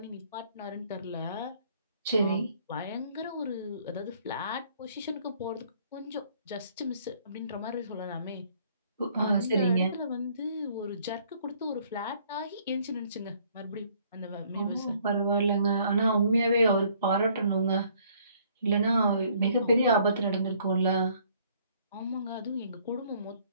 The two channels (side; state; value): both; inverted; correlation -0.62